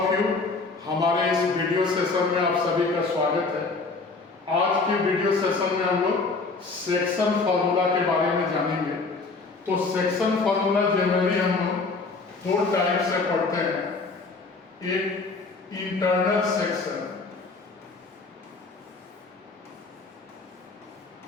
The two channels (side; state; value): right; quieter; 3.9 dB